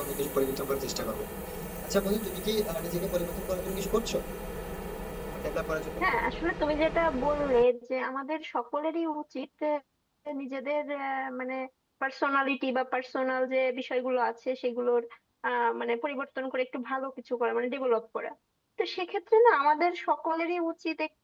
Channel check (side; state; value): both; identical; correlation 1.00